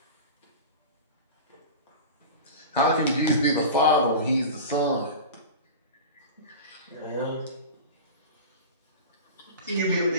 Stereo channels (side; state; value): both; inverted; correlation -0.31